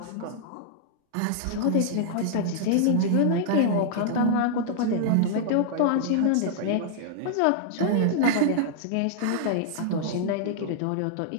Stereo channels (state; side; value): different; both; correlation -0.01